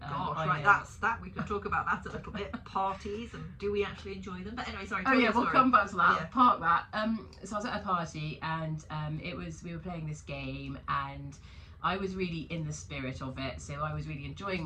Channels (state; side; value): identical; both; correlation 1.00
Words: right, that's that. We can talk about that a little bit. Parties, and do we actually enjoy them? But anyway, sorry. Oh yeah, we'll come back to that. Yeah. Park that. So I was at a party, and we were playing this game, and I was really in the spirit of it. So I was really enjoying